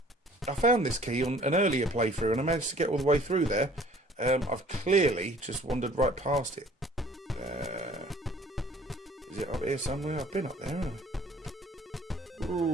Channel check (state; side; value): normal; both; correlation 0.53